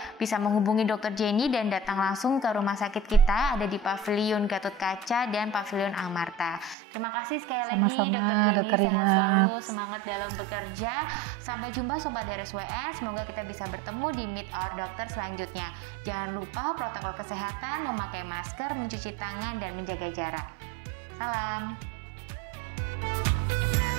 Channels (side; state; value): left; drops out; at 6.8 s